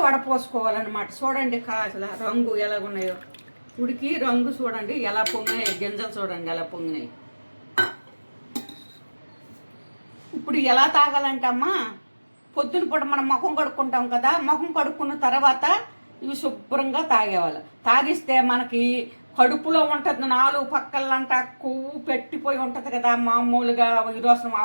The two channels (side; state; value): both; inverted; correlation -1.00